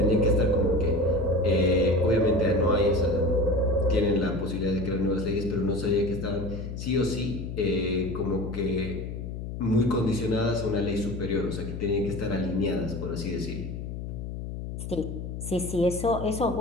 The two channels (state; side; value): noise; left; hum, 7 dB below the sound